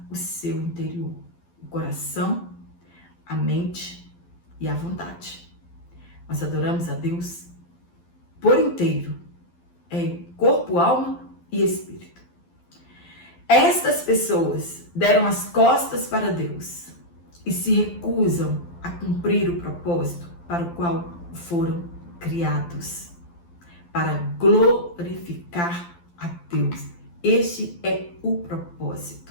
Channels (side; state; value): right; late; 12 ms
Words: o seu interior, o coração, a mente e a vontade. Nós adoramos a Deus por inteiro, corpo, alma e espírito. Estas pessoas deram as costas para Deus e se recusam a cumprir o propósito para o qual foram criados, para glorificar a Deus. Este é o